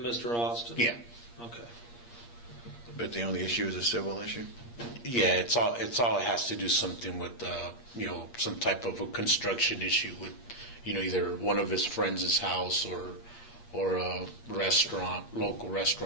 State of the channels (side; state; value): right; late; 8.5 ms